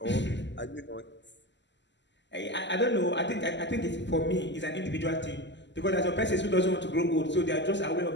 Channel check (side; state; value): right; late; 0.52 ms